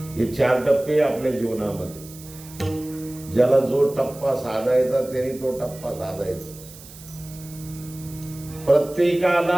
हे 4 टप्पे आपल्या जीवनामध्ये। ज्याला जो टप्पा साधायचा त्याने तो टप्पा साधायचा।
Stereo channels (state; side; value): noise; right; hiss, 18 dB below the sound